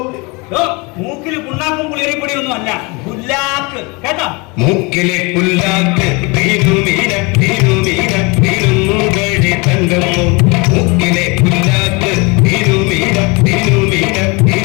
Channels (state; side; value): quieter; right; 27.9 dB